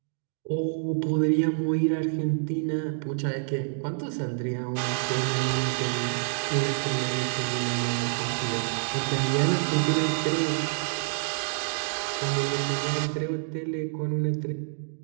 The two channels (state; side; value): silent; left; digital silence